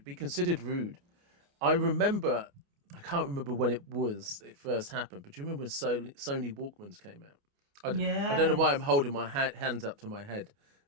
be considered rude. I remember, I can't remember when it first happened, but do you remember when Sony Walkmans came out? I don't know why I'm Yes. holding my hands up to my head,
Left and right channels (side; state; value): left; late; 29 ms